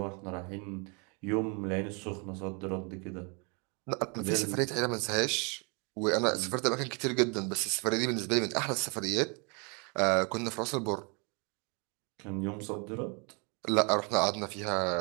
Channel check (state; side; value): quieter; left; 33.6 dB